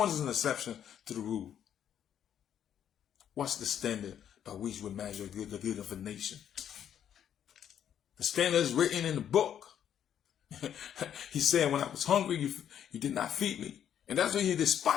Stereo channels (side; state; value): right; quieter; 9.5 dB